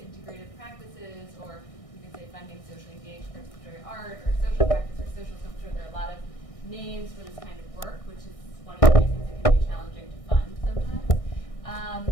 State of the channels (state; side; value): late; right; 1.6 ms